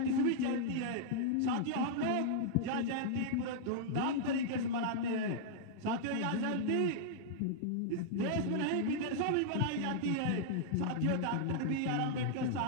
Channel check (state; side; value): different; both; correlation -0.01